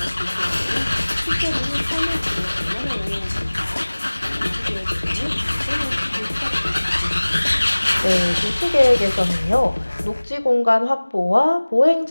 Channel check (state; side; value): inverted; both; correlation -1.00